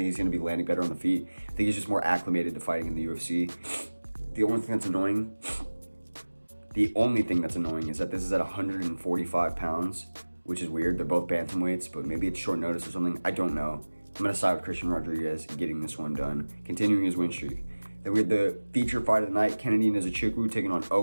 he's going to be landing better on the feet. I think he's just more acclimated to fighting in the UFC. The only thing that's annoying is that this is at 145 pounds, which is weird. They're both bantamweights, but maybe it's short notice or something. I don't know. I'm going to side with Christian Rodriguez getting this one done, continuing his win streak. Then we had the feature fight of the night, Kennedy Nzechukwu taking on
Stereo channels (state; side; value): inverted; both; correlation -1.00